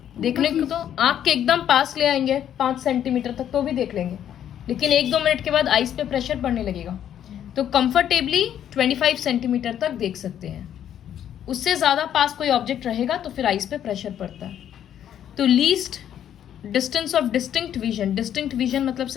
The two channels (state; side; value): quieter; right; 10.1 dB